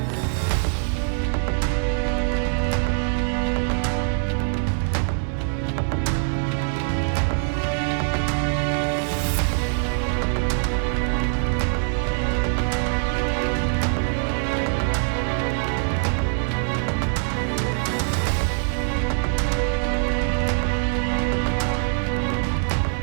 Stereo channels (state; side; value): silent; left; 58 dB below the other